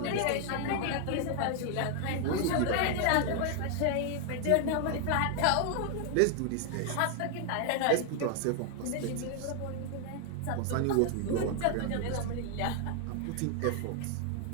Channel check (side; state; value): both; different; correlation 0.00